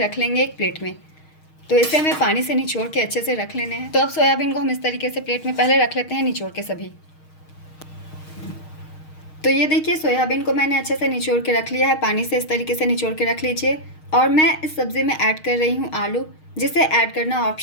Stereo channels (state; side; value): late; right; 6.4 ms